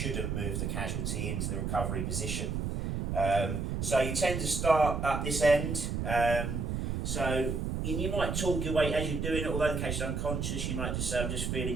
move the casualty into the recovery position. So you tend to start at this end. And you might talk your way as you're doing it, although the case is unconscious, you might just say, I'm just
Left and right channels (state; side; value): noise; right; rumble, 1 dB below the sound